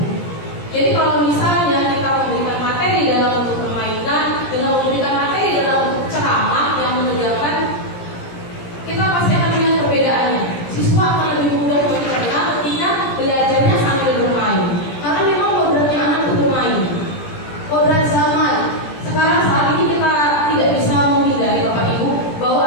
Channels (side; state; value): right; late; 17 ms